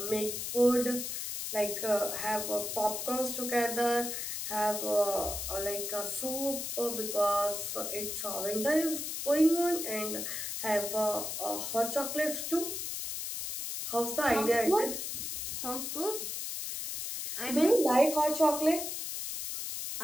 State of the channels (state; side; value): noise; left; hiss, 4 dB below the sound